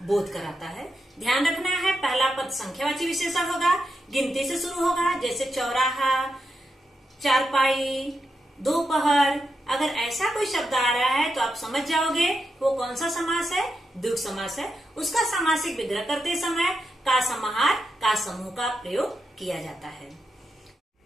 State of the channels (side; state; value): both; normal; correlation 0.86